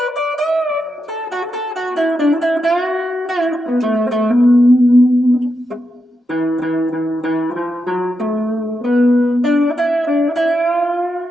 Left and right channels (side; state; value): both; normal; correlation 0.85